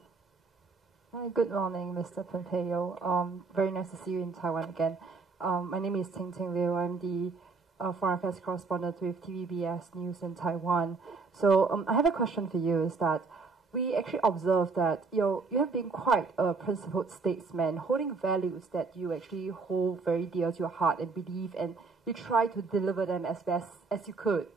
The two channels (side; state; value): left; quieter; 4.3 dB